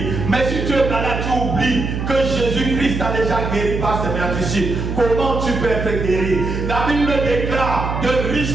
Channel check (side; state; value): right; noise; hum, 4 dB below the sound